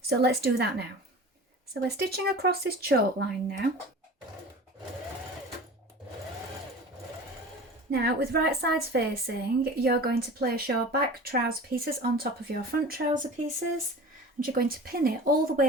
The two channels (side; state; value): both; normal; correlation 0.38